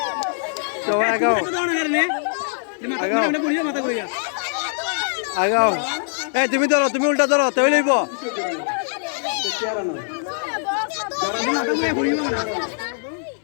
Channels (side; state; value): right; silent; 59 dB below the other